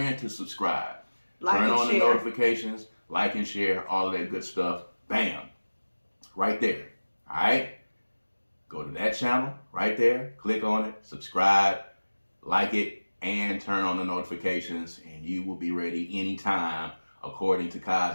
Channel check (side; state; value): both; inverted; correlation -1.00